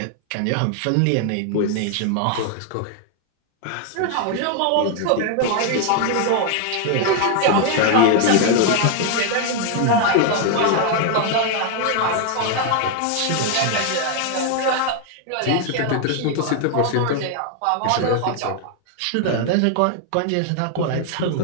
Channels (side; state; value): both; different; correlation 0.00